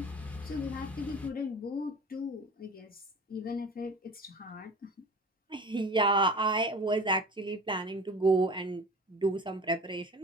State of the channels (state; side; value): normal; both; correlation 0.38